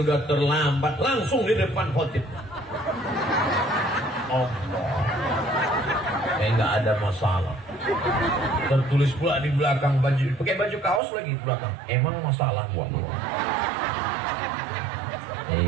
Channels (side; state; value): left; drops out; at 11.0 s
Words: udah terlambat, langsung di depan khotib. Allah, nggak ada masalah. Tertulis pula di belakang baju, pakai baju kaos lagi di belakang. Emang masalah buat lo?